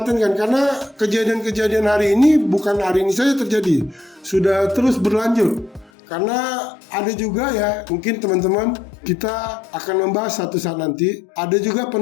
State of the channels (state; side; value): drops out; right; at 5.9 s